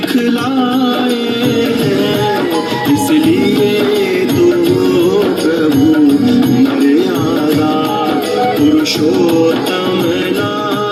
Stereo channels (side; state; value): both; identical; correlation 1.00